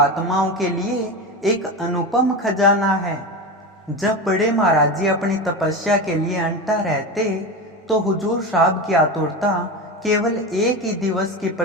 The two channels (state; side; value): normal; both; correlation 0.22